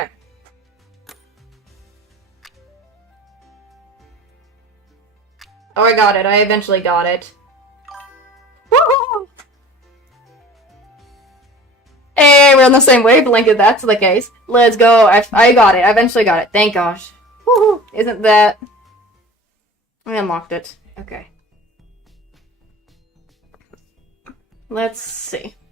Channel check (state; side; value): normal; both; correlation 0.42